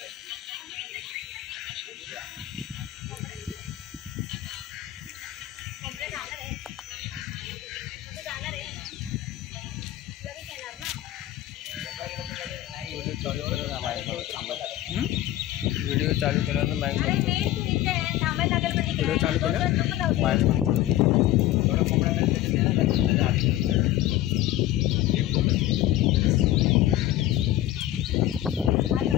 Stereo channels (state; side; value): quieter; right; 14.0 dB